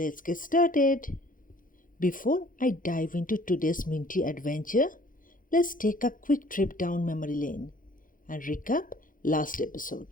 get started. Before I dive into today's minty adventure, let's take a quick trip down memory lane and recap last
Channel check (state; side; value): late; right; 0.39 ms